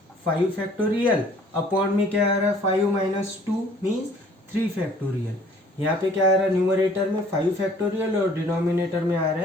5 फैक्टोरियल, अपॉन में क्या आ रहा है 5 माइनस 2 मीन्स 3 फैक्टोरियल। यहाँ पे क्या आ रहा है, न्यूमरेटर में 5 फैक्टोरियल और डिनोमिनेटर में आ रहा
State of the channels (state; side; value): normal; both; correlation 0.56